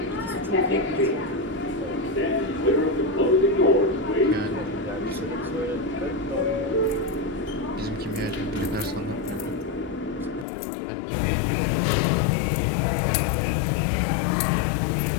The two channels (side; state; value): right; drops out; at 10.5 s